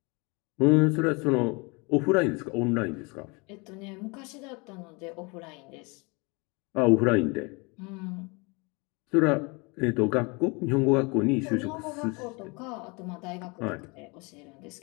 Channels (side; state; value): right; quieter; 28.8 dB